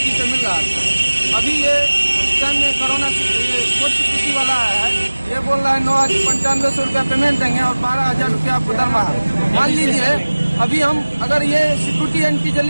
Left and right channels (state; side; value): inverted; both; correlation -1.00